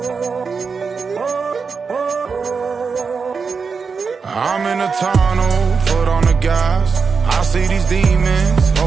I'm in a tunnel, foot on the gas. I see these demons,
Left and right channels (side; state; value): left; quieter; 5.3 dB